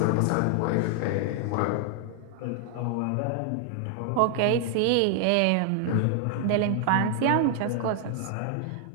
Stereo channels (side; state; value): both; different; correlation 0.00